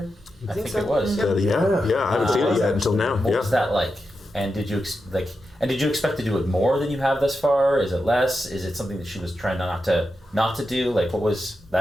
I think so. it was. Yeah. I haven't seen it yet until now. What was that like? And did you expect to do it more than you have thus far? Is it less? Is it something that she was trying not to do? Like, what was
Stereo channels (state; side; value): normal; both; correlation 0.88